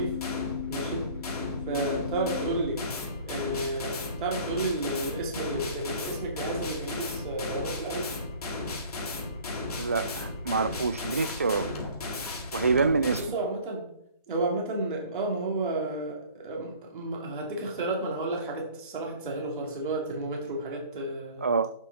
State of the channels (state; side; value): inverted; both; correlation -0.48